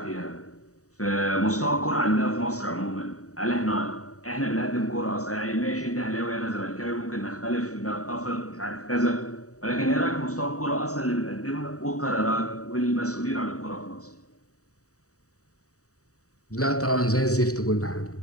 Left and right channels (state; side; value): late; right; 0.66 ms